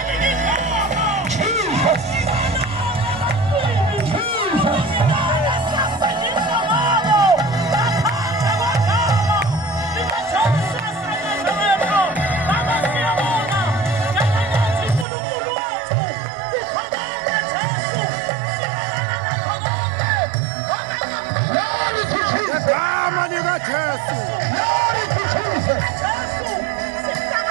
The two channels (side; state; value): left; drops out; at 15.1 s